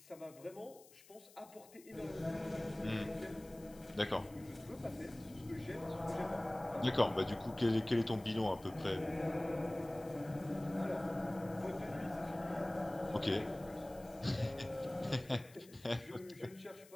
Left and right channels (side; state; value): left; noise; hiss, 22 dB below the sound